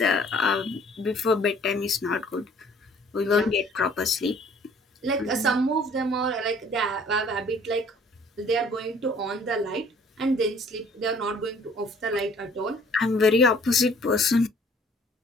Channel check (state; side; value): normal; both; correlation 0.56